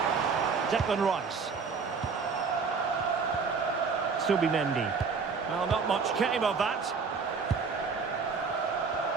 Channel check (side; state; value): left; quieter; 5.2 dB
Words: Declan Rice. Subimendi. Well, not much came of that.